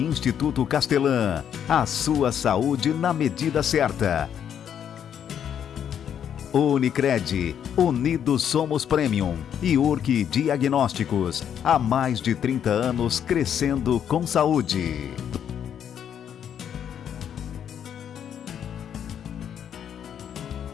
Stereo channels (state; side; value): quieter; right; 8.9 dB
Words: Castelã. A sua saúde na medida certa. Unicred, Unidos Somos Premium e URC Diagnósticos, há mais de 30 anos crescendo com saúde.